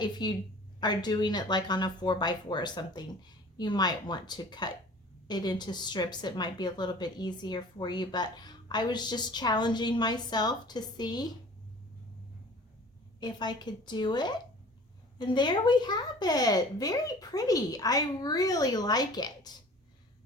if you are doing it like on a 4x4 or something, you might want to cut it into strips. It might be a little bit easier for you, but I was just challenging myself to see if I could do it. And there we have it. Very pretty. I really like it.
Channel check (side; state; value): both; normal; correlation 0.46